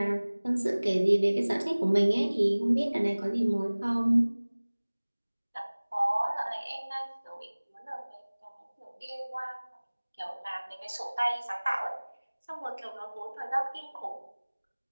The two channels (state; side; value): inverted; both; correlation -1.00